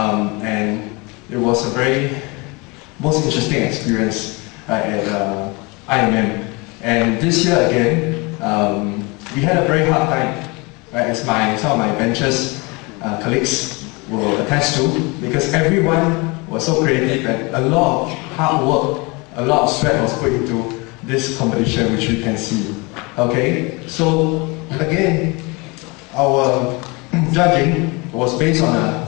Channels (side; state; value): right; quieter; 27.4 dB